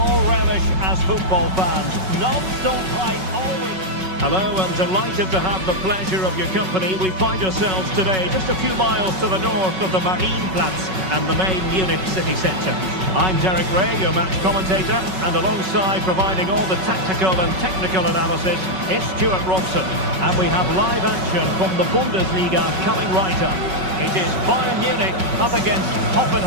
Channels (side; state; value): left; late; 5.3 ms